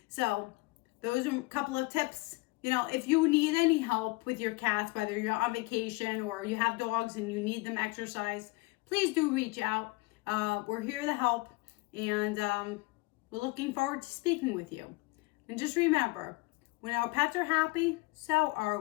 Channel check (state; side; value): quieter; right; 23.9 dB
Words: So those are a couple of tips. If you need any help with your cats, whether you're on vacation or you have dogs and you need them exercise, please do reach out. We're here to help, and We're looking forward to speaking with you. And just remember, when our pets are happy, so are